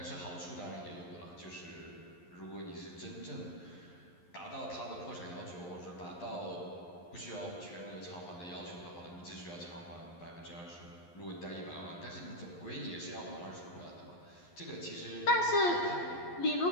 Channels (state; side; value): late; right; 11 ms